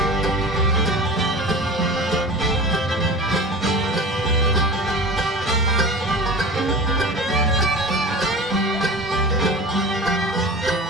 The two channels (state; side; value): normal; both; correlation 0.33